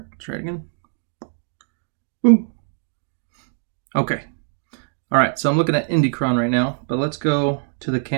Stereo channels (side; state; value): left; silent; 60 dB below the other